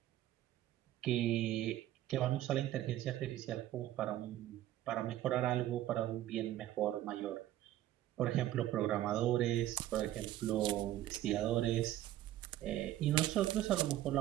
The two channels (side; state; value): left; quieter; 13.6 dB